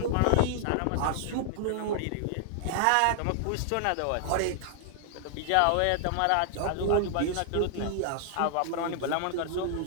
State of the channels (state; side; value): different; both; correlation -0.01